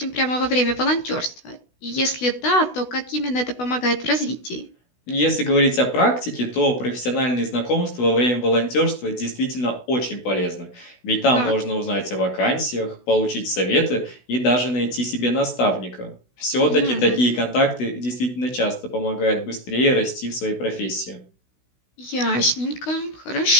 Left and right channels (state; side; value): late; right; 16 ms